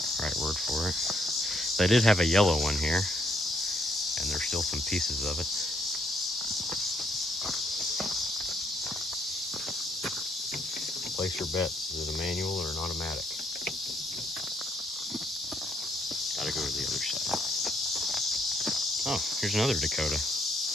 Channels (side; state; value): both; normal; correlation 0.71